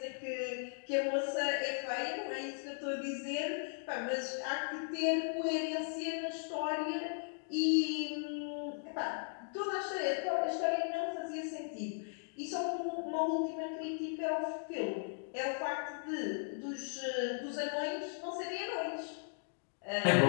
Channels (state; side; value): silent; right; digital silence